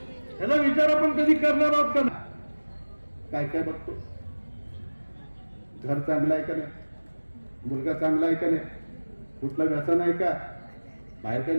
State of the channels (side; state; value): both; inverted; correlation -1.00